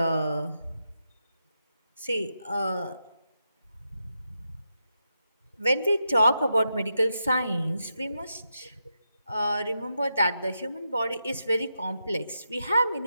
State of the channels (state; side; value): inverted; both; correlation -0.86